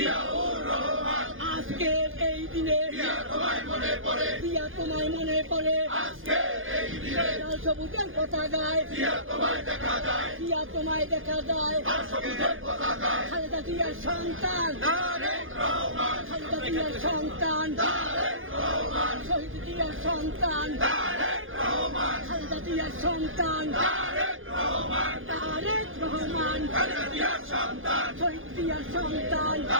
আজকের এই দিনে দিয়া তোমায় মনে পড়ে লাল সবুজের পতাকায় দিয়া তোমায় দেখা যায় খালেদা জিয়ার সন্তান খালেদা জিয়ার সন্তান শহীদ জিয়ার সন্তান খালেদা জিয়ার সন্তান তারেক রহমান শহীদ জিয়ার সন্তান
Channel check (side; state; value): left; late; 0.59 ms